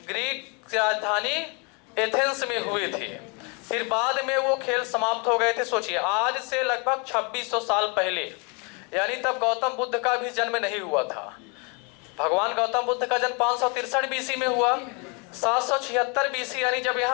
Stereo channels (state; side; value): quieter; right; 33.0 dB